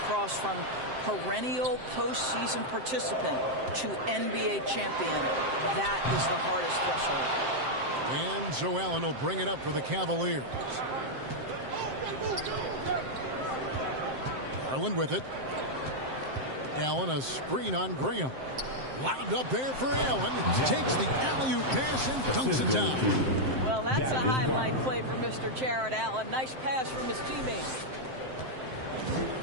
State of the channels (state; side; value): late; left; 7.7 ms